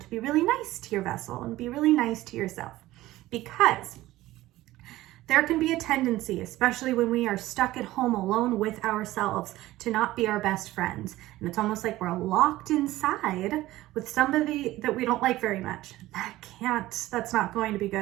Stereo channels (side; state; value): left; quieter; 16.6 dB